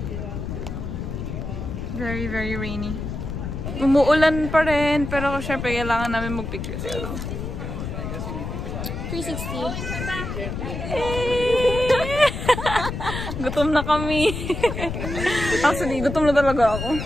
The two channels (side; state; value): left; noise; rumble, 5 dB below the sound